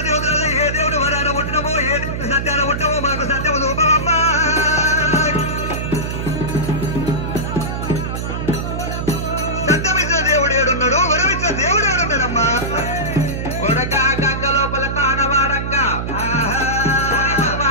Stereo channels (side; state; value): right; noise; hum, 3 dB below the sound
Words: దేవతలలో ఏ దేవుడు వరాన పుట్టినమో ఏ దేవుడు సత్యాన పుట్టమో మాకు సత్యము రూపమమ్మా. సత్యమిచ్చిన దేవుడు ఏడున్నాడు, వరమిచ్చిన దేవుడు ఏడున్నాడమ్మా?